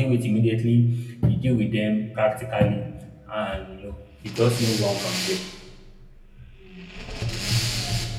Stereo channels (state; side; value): identical; both; correlation 1.00